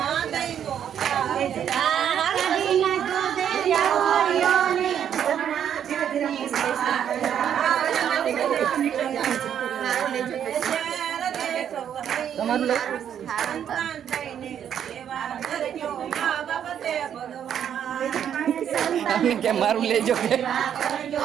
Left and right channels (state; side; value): quieter; left; 9.2 dB